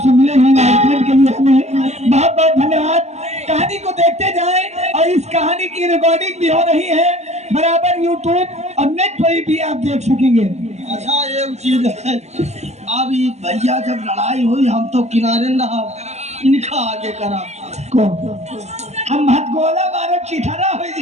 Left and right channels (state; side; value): late; left; 0.32 ms